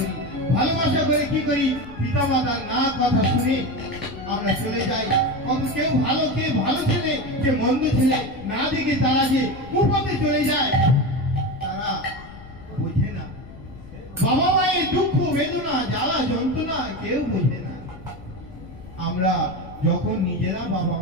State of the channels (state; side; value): noise; left; rumble, 18 dB below the sound